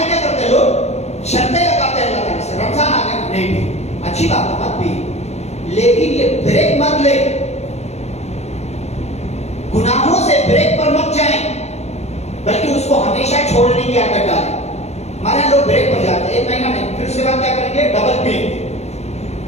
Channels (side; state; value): right; late; 0.31 ms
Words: کیا کرتے ہیں لوگ, شرطیں لگاتے ہیں اللہ تعالیٰ سے, رمضان آ گیا نہیں پی. اچھی بات ہے مت پی, لیکن یہ بریک مت لے. گناہوں سے بریک پر مت جائیں بلکہ اس کو ہمیشہ چھوڑنے کی عادت ڈالیں. ہمارے لوگ بریک پر جاتے ہیں 1 مہینہ نہیں, پھر اس کے بعد کیا کریں گے, ڈبل پئیں گے.